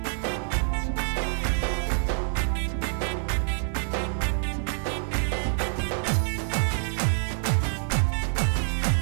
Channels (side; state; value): left; silent; 60 dB below the other